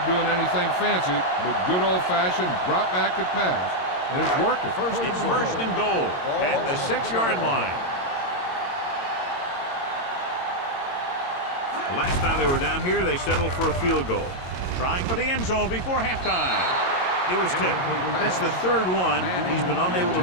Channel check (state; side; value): late; right; 22 ms